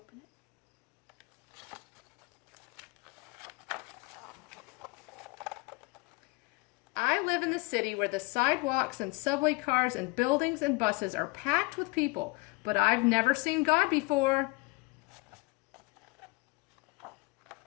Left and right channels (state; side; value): quieter; right; 25.5 dB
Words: I live in the city where the sidewalks and subway cars and buildings and buses are packed with people, but I've never seen God before.